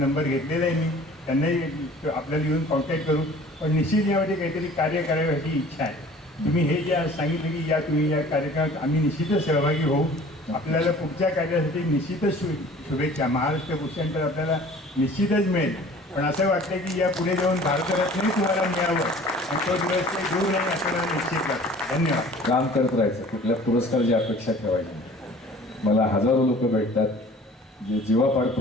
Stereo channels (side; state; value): both; normal; correlation 0.48